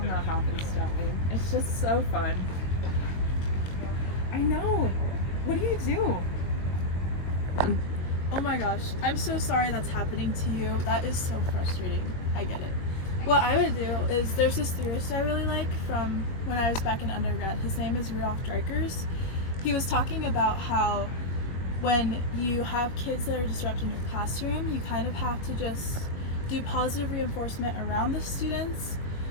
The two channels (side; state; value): right; late; 22 ms